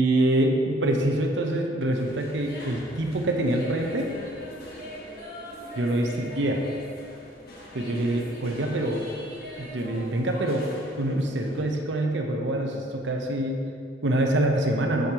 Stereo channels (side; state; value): both; normal; correlation 0.58